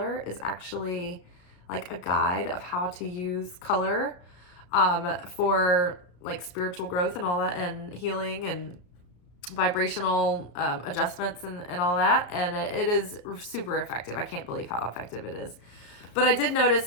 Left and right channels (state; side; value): late; right; 33 ms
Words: is actually like a guide of how to use color for like spiritual growth and all that, and healing and vibrational adjustments and all that. And it is super effective. I can't believe how effective it is. But I did notice